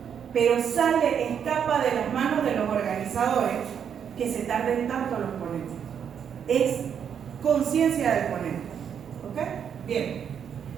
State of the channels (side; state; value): left; quieter; 8.0 dB